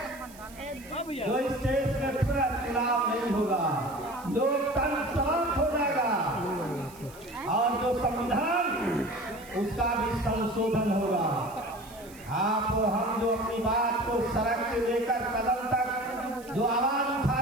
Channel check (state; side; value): noise; right; hiss, 21 dB below the sound